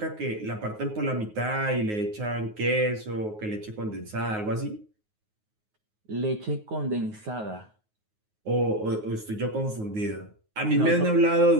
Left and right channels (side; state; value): left; late; 9.5 ms